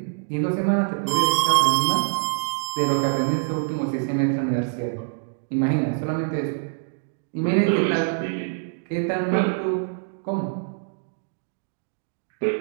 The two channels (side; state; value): left; silent; digital silence